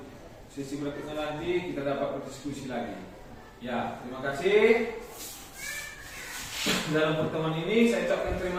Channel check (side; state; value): both; identical; correlation 1.00